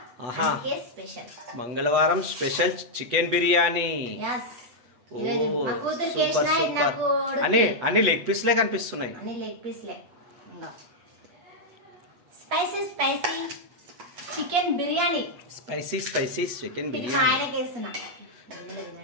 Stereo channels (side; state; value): left; late; 8.1 ms